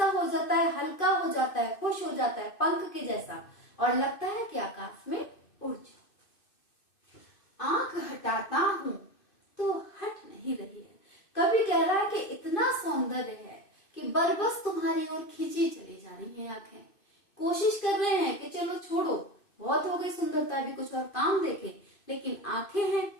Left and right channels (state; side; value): late; right; 2.6 ms